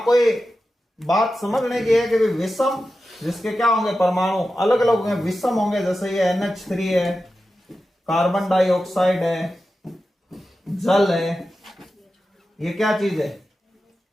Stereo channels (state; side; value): normal; both; correlation 0.92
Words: कोई बात समझने की है कि विषम, जिसके क्या होंगे? परमाणु अलग अलग होंगे, विषम होंगे। जैसे ये NH3 है, कार्बन डाइऑक्साइड है, जल है, ये क्या चीज है?